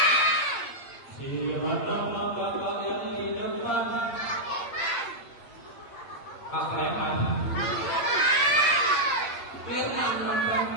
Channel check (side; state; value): right; late; 8.3 ms